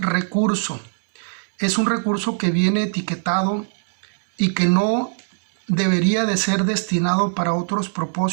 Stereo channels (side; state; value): left; silent; digital silence